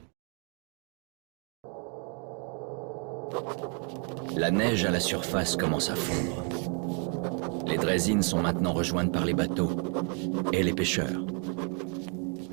La neige à la surface commence à fondre. Les draisines sont maintenant rejointes par les bateaux et les pêcheurs.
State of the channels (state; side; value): quieter; left; 39.2 dB